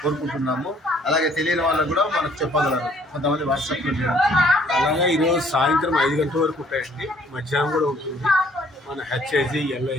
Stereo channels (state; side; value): normal; both; correlation 0.61